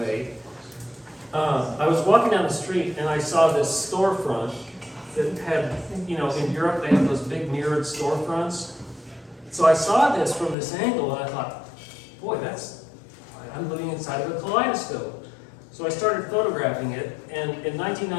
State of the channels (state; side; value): drops out; right; at 10.6 s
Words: I was walking down the street and I saw this storefront that had, in Europe they have those big mirrored storefronts. So I saw this from this angle and I thought, boy, I'm living inside of a kaleidoscope. So I started photographing it, and in